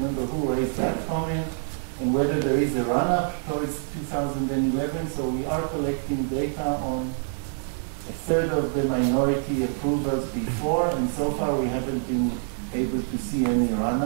who raised that comment, and whether there is a run-up towards 2011. So we are collecting data on a third of the minority approvals before, and so far we haven't been able to see any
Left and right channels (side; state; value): left; silent; digital silence